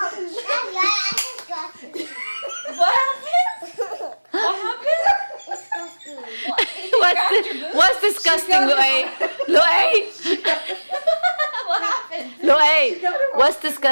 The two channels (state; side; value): inverted; both; correlation -1.00